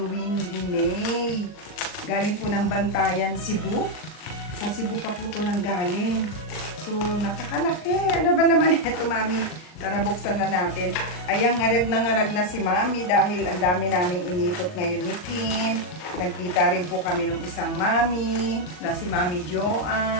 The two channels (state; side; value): late; right; 39 ms